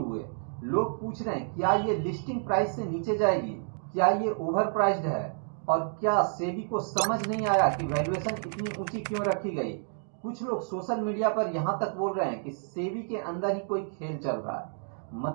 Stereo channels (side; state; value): left; silent; digital silence